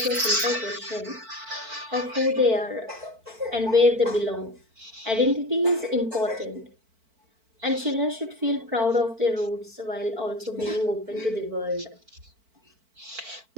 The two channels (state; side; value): late; left; 4.5 ms